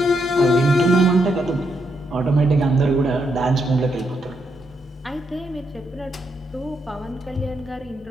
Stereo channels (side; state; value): both; normal; correlation 0.79